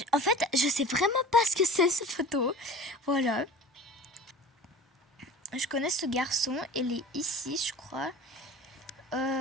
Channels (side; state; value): both; normal; correlation 0.39